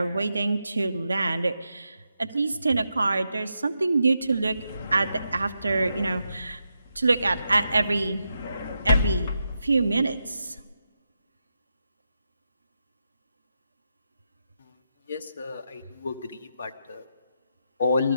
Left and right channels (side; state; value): both; inverted; correlation -0.85